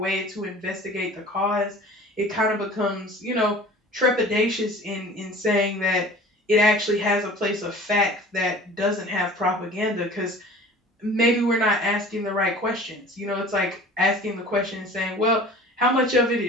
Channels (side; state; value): both; normal; correlation 0.43